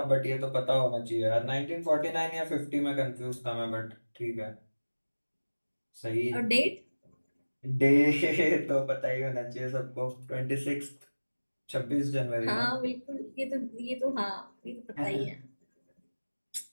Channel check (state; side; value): inverted; both; correlation -1.00